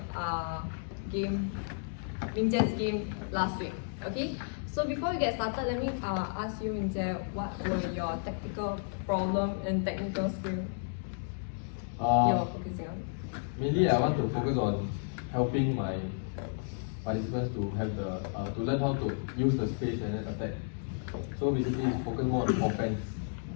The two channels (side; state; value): right; silent; digital silence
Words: game last week. Okay, so before we get started, let me ask you, Mingjie, what were your tactical problem and technical skill you're focusing on? Mainly, I want to focus on helping my participants to have to learn how to use the space and then attack. So basically, focus more on offense.